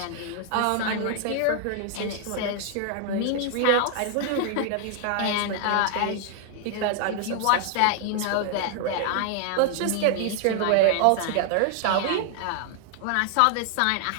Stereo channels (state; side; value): different; both; correlation 0.00